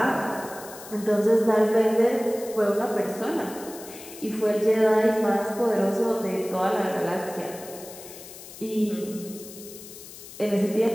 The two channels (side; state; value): left; noise; hiss, 16 dB below the sound